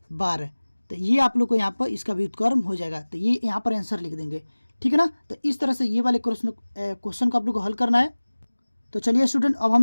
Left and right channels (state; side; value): inverted; both; correlation -1.00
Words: 12। तो ये आप लोग को यहाँ पर इसका व्युत्क्रम हो जाएगा, तो ये यहाँ पर आंसर लिख देंगे, ठीक है ना। तो इस तरह से ये वाले क्वेश्चन को आप लोग को हल करना है। तो चलिए स्टूडेंट अब हम